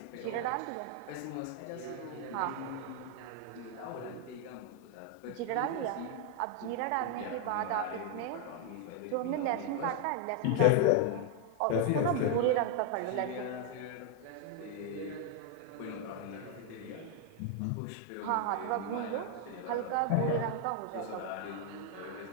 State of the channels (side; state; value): both; different; correlation 0.01